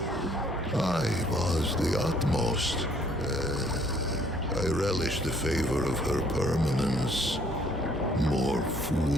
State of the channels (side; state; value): both; normal; correlation 0.62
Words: I was the utmost. I relished the favor of her permanence. More